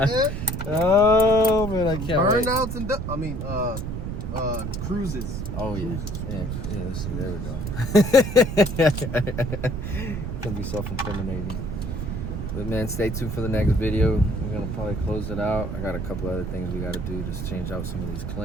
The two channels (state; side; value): noise; right; rumble, 4 dB below the sound